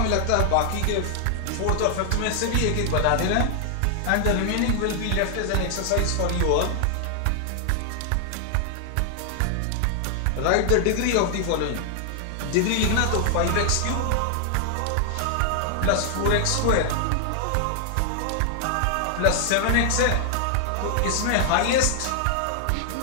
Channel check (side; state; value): both; different; correlation 0.00